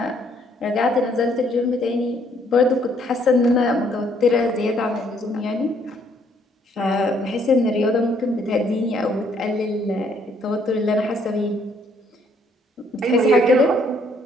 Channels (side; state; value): both; normal; correlation 0.66